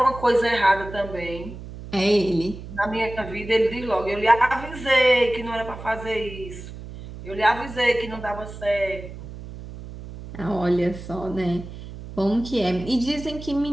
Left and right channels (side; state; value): right; noise; hum, 12 dB below the sound